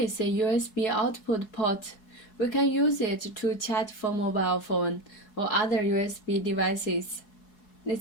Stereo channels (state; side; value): late; right; 4.7 ms